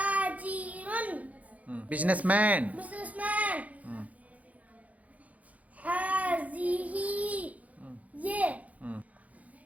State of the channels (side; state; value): left; late; 0.071 ms